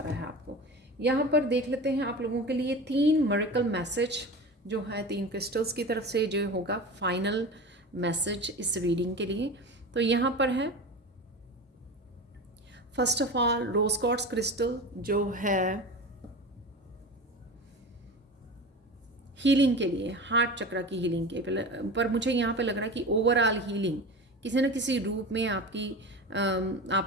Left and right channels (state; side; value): normal; both; correlation 0.30